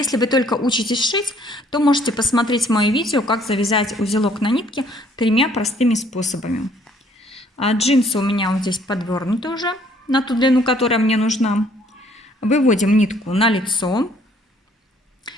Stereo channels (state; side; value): normal; both; correlation 0.62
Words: вы только учитесь шить, то можете посмотреть мое видео, как завязать узелок на нитке 3 простыми способами. Джинсы у меня вот здесь подвернуты уже на ту длину, которая мне нужна. Выводим нитку на лицо.